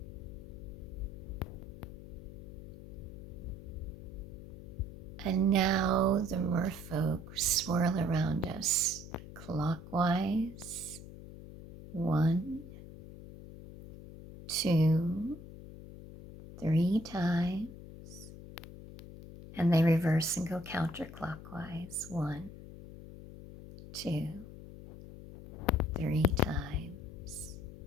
And now the merfolk swirl around us clockwise. 1, 2, 3 times. And they reverse and go counterclockwise. 1, 2, 3 times.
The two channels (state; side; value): noise; left; hum, 13 dB below the sound